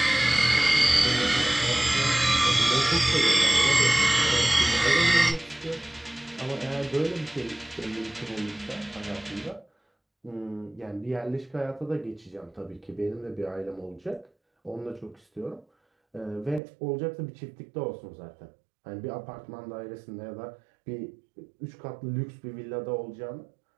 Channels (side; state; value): left; drops out; at 16.6 s